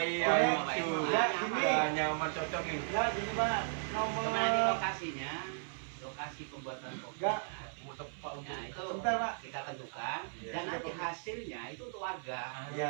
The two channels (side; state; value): left; silent; 54 dB below the other